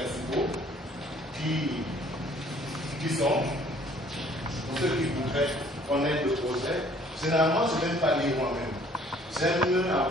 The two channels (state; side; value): normal; both; correlation 0.57